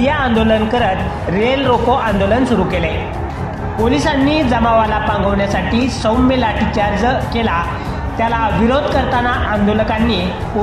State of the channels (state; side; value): identical; both; correlation 1.00